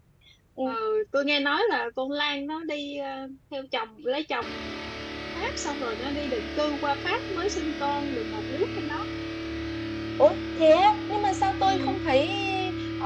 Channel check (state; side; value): identical; both; correlation 1.00